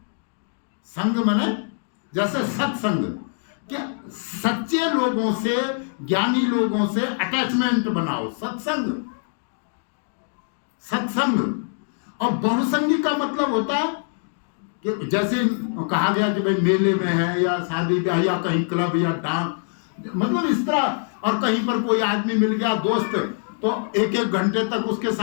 संग माने जैसे सत्संग, क्या सच्चे लोगों से, ज्ञानी लोगों से अटैचमेंट बनाओ, सत्संग। और बहुसंगी का मतलब होता है कि जैसे कहा गया कि भाई मेले में है या शादी ब्याह या कहीं क्लब या डांस, मतलब इस तरह, और कहीं पर कोई आदमी मिल गया दोस्त, तो एक एक घंटे तक उसके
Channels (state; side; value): silent; right; 63 dB below the other